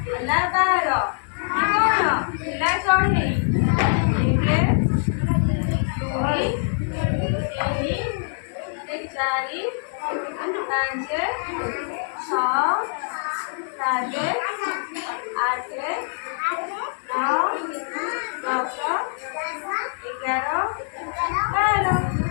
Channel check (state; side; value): silent; right; digital silence